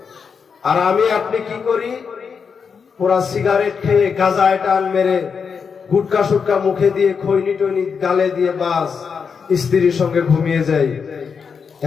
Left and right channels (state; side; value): quieter; right; 6.0 dB